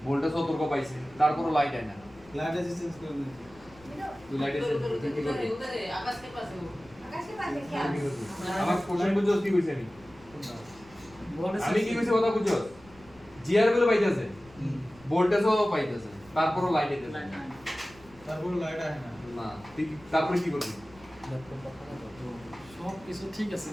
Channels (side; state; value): left; noise; rumble, 25 dB below the sound